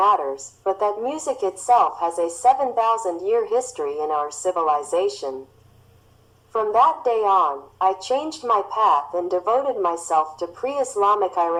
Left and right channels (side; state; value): both; identical; correlation 1.00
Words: but that music itself has a 7,000-year history in our civilization. From that day on, I changed my path and devoted myself to pre-Islamic